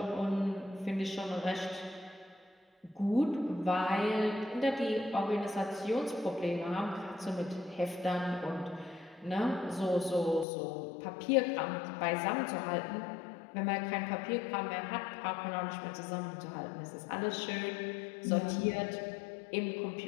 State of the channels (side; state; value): right; drops out; at 10.5 s